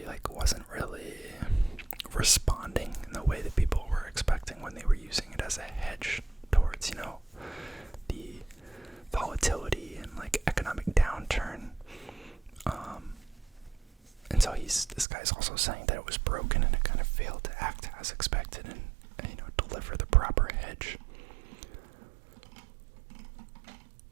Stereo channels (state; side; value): drops out; left; at 15.1 s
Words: wasn't really responding in the way that people were expecting when they were using it as a hedge towards, the volatility and economic downturn. And so this guy's also saying that it was broken and it kind of failed to act as expected and deliver the proper hedge.